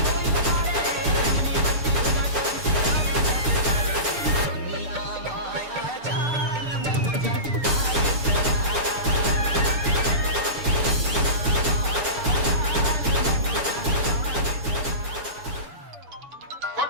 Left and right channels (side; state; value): left; late; 7.0 ms